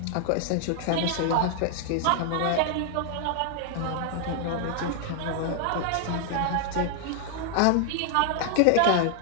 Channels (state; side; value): different; both; correlation 0.00